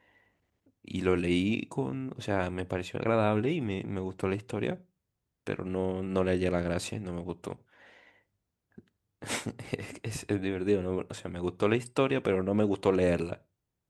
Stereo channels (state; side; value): identical; both; correlation 1.00